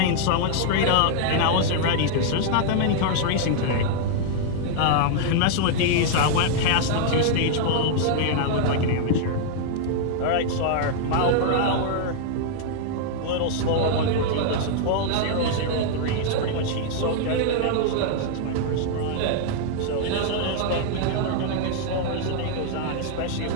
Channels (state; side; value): different; both; correlation -0.01